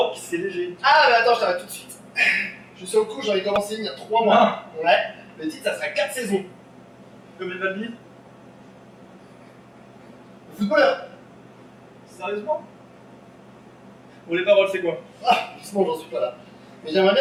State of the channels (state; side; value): identical; both; correlation 1.00